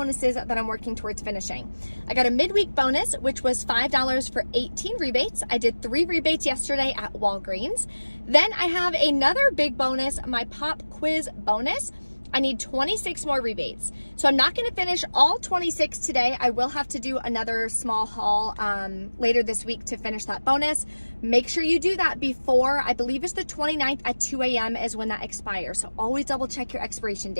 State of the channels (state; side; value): inverted; both; correlation -1.00